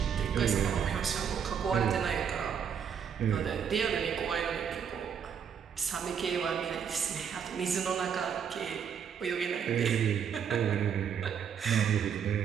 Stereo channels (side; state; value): left; quieter; 7.5 dB